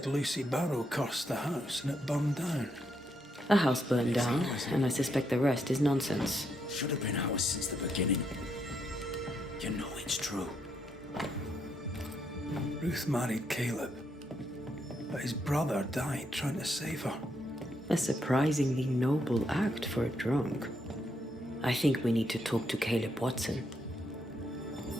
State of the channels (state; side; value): normal; both; correlation 0.78